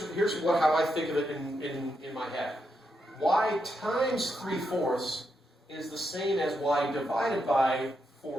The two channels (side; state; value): both; normal; correlation 0.82